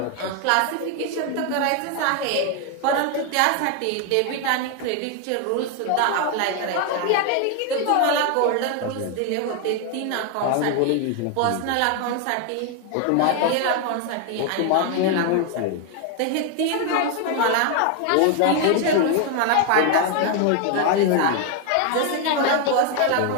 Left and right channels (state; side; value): different; both; correlation 0.01